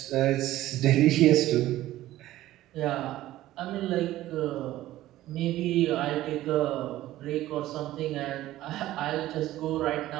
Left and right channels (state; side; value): quieter; left; 15.1 dB